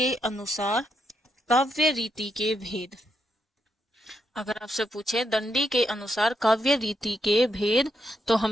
अनुसार काव्य रीति के भेद। अगर आपसे पूछे दंडी के अनुसार काव्य रीति के भेद, तो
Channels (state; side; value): normal; both; correlation 0.80